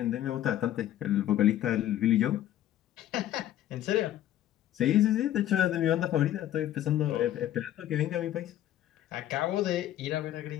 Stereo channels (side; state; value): right; quieter; 12.5 dB